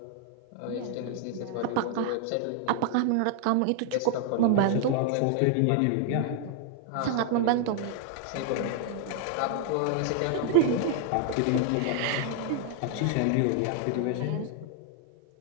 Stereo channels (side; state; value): both; different; correlation 0.00